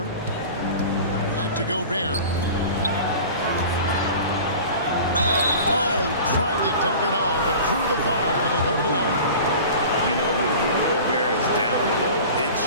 Back to Gobert. Oh, tried to dunk it home, but drew the foul, and he'll go to the line. You know, when Rudy Gobert is down low, it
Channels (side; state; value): both; inverted; correlation -0.39